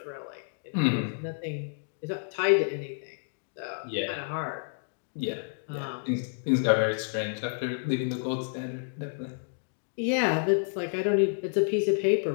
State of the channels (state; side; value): silent; right; digital silence